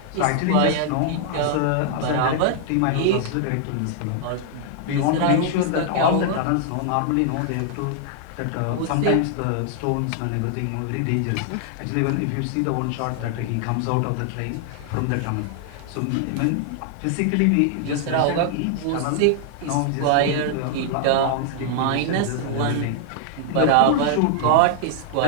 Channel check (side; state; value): both; different; correlation 0.00